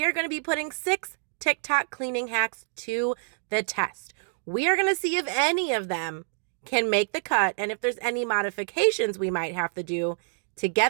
are going to be putting 6 TikTok cleaning hacks to the test. We are going to see if any of them can make the cut and if there's any modifications we might have to do to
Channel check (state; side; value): silent; left; digital silence